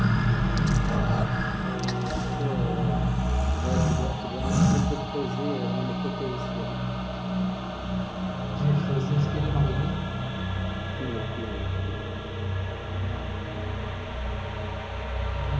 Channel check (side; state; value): both; identical; correlation 1.00